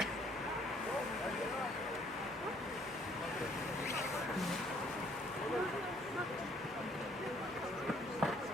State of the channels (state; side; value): normal; both; correlation 0.63